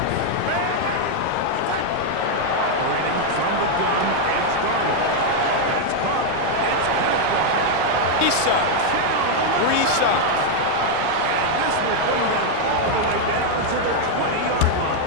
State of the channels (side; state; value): both; different; correlation 0.00